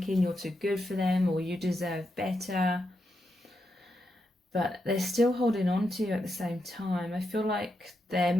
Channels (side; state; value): both; normal; correlation 0.84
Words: you're too good for them or you deserve better. But they're still holding on to you at the same time. I feel like they're